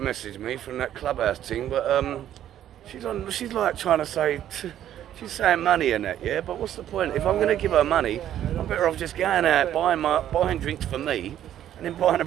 me from that clubhouse thing, but she's like trying to say, she's saying money and that, yeah? But what's the point? If I'm going to give her money, I'm better off just going out, buying drinks for me, and then buying a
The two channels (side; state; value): left; quieter; 11.3 dB